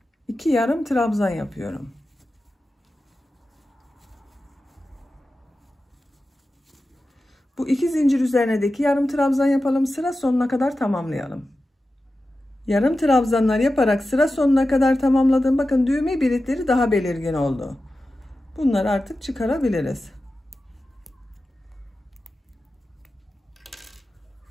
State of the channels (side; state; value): both; normal; correlation 0.93